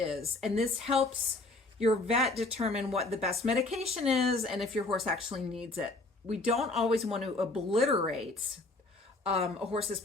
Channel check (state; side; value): quieter; right; 3.1 dB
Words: And this helps your vet determine what the best medication is and if your horse actually needs it. We don't always want to obliterate a horse's